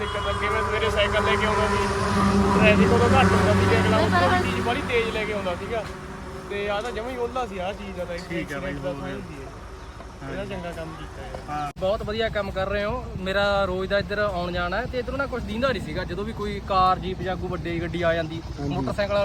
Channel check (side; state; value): both; identical; correlation 1.00